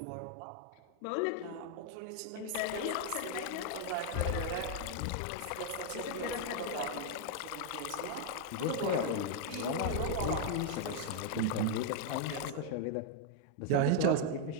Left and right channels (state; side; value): different; both; correlation 0.00